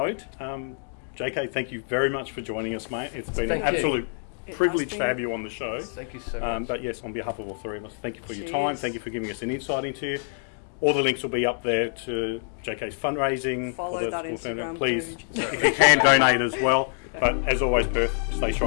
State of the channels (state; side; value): silent; right; 61 dB below the other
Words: JK, thank you very much for joining us, mate. It's been an absolute privilege to have you on the show. Thank you so much. But yes, on behalf of all three of us, thank you for your time. Thank you for giving us an insight into you. All the links will be up there to JK's fundraising. Follow that Instagram. Please, if you can, donate as well. But as always, Perth, stay